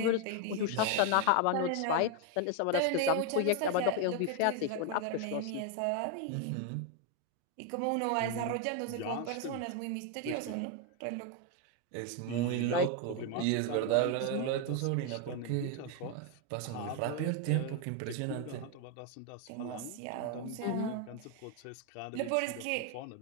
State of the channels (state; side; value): different; both; correlation 0.01